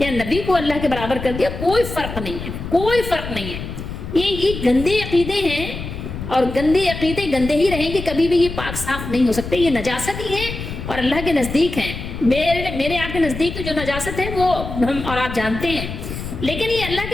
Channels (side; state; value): left; noise; rumble, 8 dB below the sound